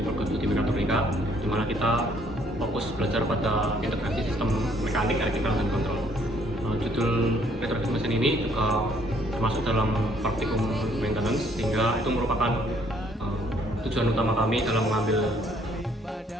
studi mekatronika, di mana kita fokus belajar pada integrasi sistem mekanik, elektrikal, dan kontrol. Judul retrofit mesin ini juga termasuk dalam praktikum maintenance, sehingga itu merupakan tujuan utama kami dalam mengambil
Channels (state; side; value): normal; both; correlation 0.64